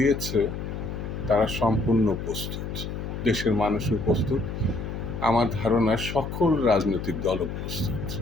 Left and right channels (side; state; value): left; noise; hum, 6 dB below the sound